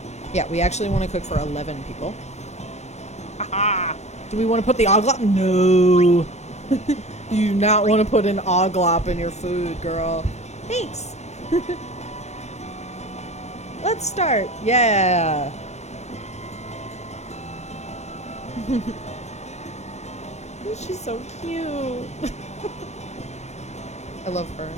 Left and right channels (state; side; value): late; right; 0.32 ms